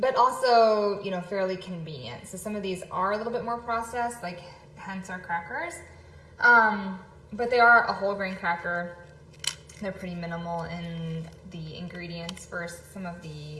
also, fairly convenient. So some of these are a little bit more processed, like hence our crackers. But they are a whole grain cracker. They're pretty minimal in the ingredients versus some of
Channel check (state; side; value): identical; both; correlation 1.00